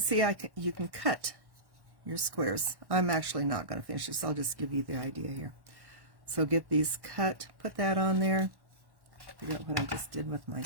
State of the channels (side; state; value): left; late; 1.1 ms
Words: see you can cut your squares. I'm actually not going to finish this. I'll just give you the idea here. So get these cut, put that on there. Figure out what I just did with my